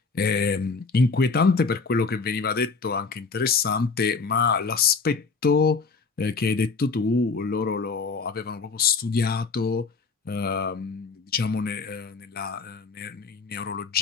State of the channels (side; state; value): right; quieter; 4.5 dB